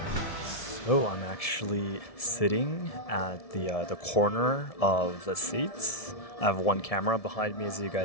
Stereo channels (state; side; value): late; right; 1.7 ms